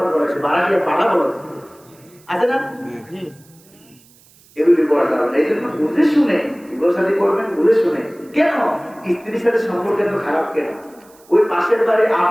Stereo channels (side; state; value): right; noise; hiss, 28 dB below the sound